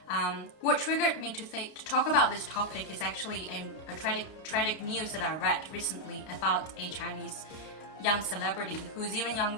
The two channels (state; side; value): late; right; 32 ms